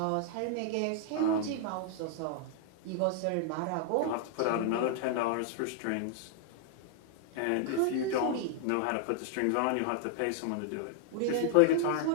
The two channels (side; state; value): both; different; correlation -0.01